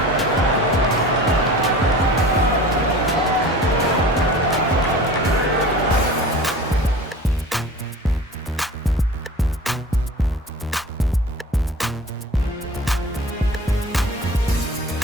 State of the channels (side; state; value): both; normal; correlation 0.39